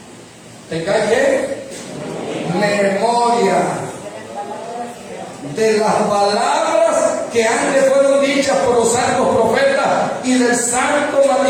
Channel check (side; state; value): both; identical; correlation 1.00